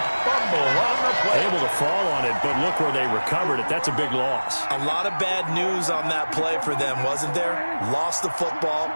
fumble on the play. Able to fall on it, but look where they recovered it. That's a big loss. A lot of bad news on that play for them, wasn't there? Lost the football,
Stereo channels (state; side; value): inverted; both; correlation -1.00